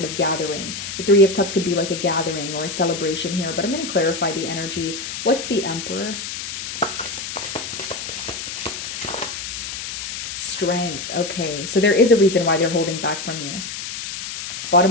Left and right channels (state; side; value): noise; left; hiss, 6 dB below the sound